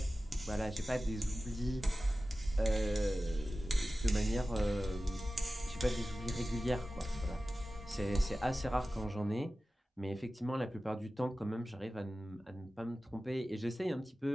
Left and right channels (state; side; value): normal; both; correlation 0.95